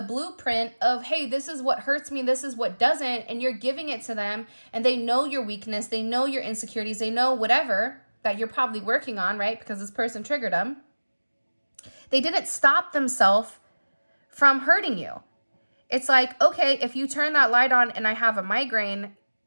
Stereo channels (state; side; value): inverted; both; correlation -1.00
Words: blueprint of, hey, this is what hurts me, this is what doesn't, and you're giving it to them, and they know your weakness, they know your insecurities, they know whatever that you're probably working on, right? Because this person triggered them. They didn't stop themselves from hurting you. It's like, okay, if you turn that light on and I have a migraine,